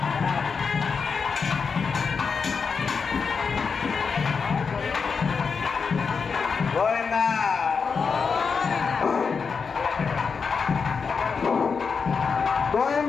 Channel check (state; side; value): quieter; right; 5.5 dB